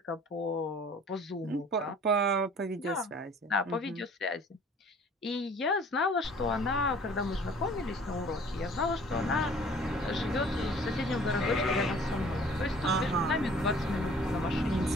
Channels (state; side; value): normal; both; correlation 0.51